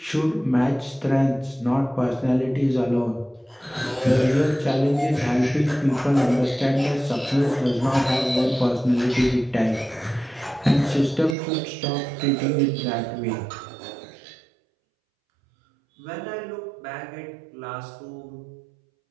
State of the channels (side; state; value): left; drops out; at 11.4 s